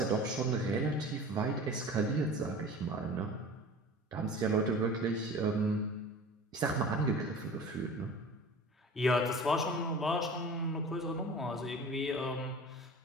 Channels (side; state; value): both; normal; correlation 0.39